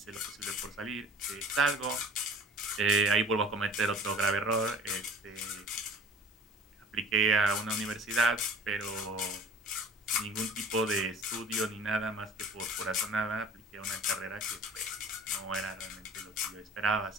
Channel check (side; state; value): both; normal; correlation 0.45